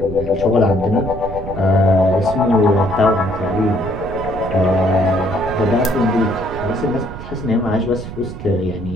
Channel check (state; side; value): noise; right; rumble, 10 dB below the sound